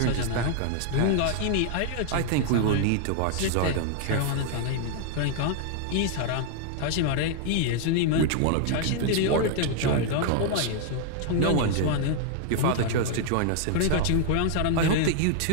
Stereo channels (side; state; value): both; different; correlation 0.00